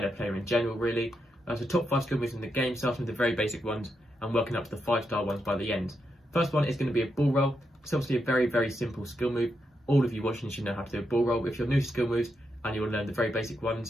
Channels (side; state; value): both; normal; correlation 0.83